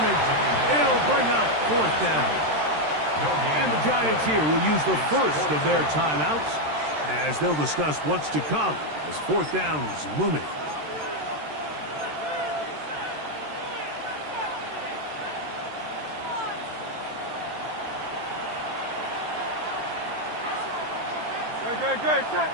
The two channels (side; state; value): left; late; 13 ms